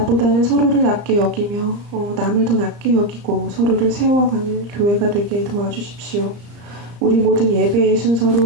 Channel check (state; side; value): late; left; 35 ms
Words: 서로를 낮게 여기며 남을 더 낮게 여기고 서로를 세워가는 교회가 되게 도와주십시오. 우리 모든 예배의